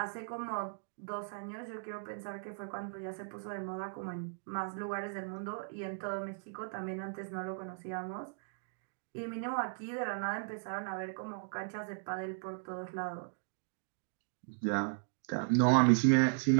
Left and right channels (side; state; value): left; silent; digital silence